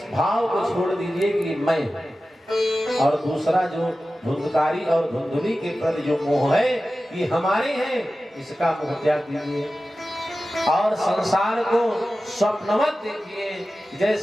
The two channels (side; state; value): both; normal; correlation 0.94